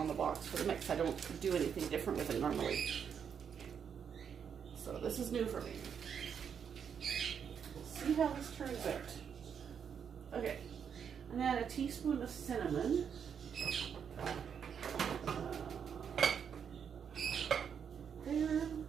the box for the mix. I don't do anything different with it normally. So this is new for me. We'll see how this turns out. Okay. And then a teaspoon of cinnamon. There.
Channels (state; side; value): quieter; left; 7.4 dB